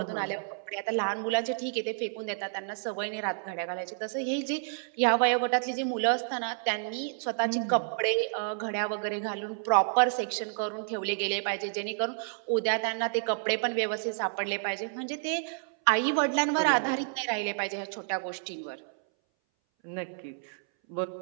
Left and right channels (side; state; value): left; silent; 58 dB below the other